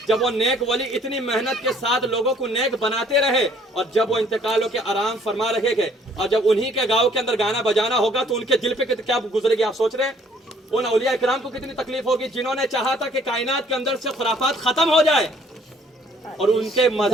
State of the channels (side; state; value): both; normal; correlation 0.60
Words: جب وہ نیک ولی اتنی محنت کے ساتھ لوگوں کو نیک بناتے رہے اور جب وہ انتقال ہو کے آرام فرما رہے گے اور جب انہی کے گاؤں کے اندر گانا بجانا ہوگا تو ان کے دل پہ کیا گزرے گی، آپ سوچ رہے ہیں؟ ان اولیاء اکرام کو کتنی تکلیف ہوگی جنہوں نے چاہا تھا کہ کائنات کے اندر سے خرافات ختم ہو جائے، اور ان کے